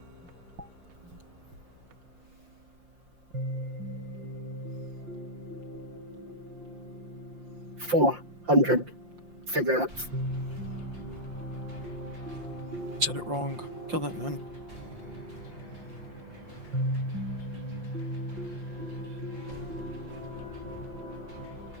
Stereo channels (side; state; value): left; late; 5.7 ms